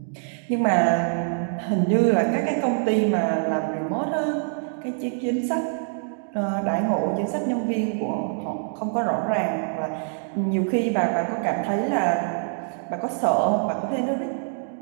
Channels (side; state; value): left; silent; 62 dB below the other